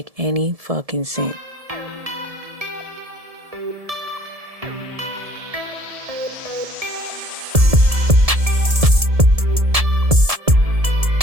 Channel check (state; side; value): late; left; 1.7 ms